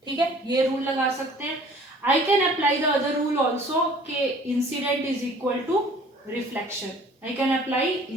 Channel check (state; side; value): normal; both; correlation 0.52